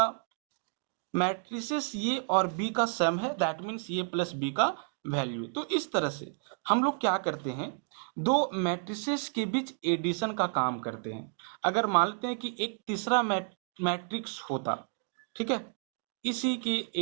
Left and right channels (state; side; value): silent; left; 55 dB below the other